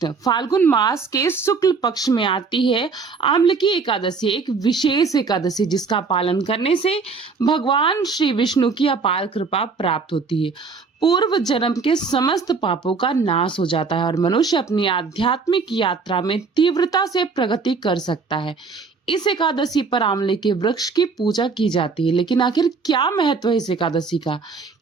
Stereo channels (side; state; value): left; quieter; 4.8 dB